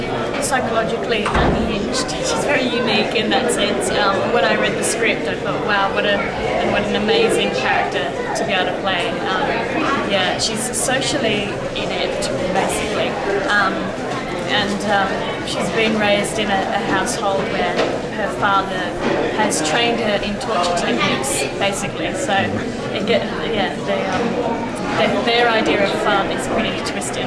psychologically unhinged. She's very unique in that sense. When I read the script, I thought, wow, what an amazing character to be able to play. She's socially inept, basically. She's been raised in a household where her father has trained her in torture techniques, basically. So their idea of fun is pretty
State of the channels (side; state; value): both; identical; correlation 1.00